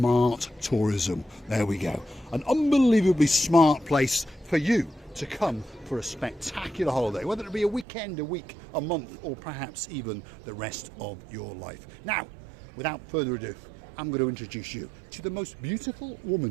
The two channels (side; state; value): left; drops out; at 7.9 s